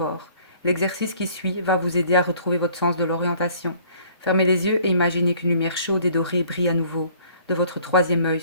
L'exercice qui suit va vous aider à retrouver votre sens de l'orientation. Fermez les yeux et imaginez qu'une lumière chaude et dorée brille à nouveau, de votre troisième œil,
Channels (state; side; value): inverted; both; correlation -0.56